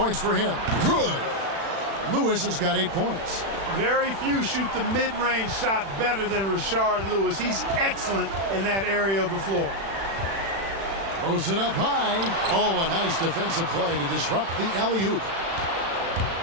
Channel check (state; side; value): late; left; 36 ms